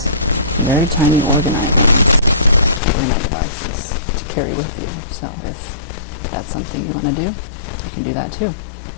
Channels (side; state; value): right; drops out; at 2.8 s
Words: very tiny Orgonite ones, Orgonite devices to carry with you. So if that's something you want to do, you can do that too.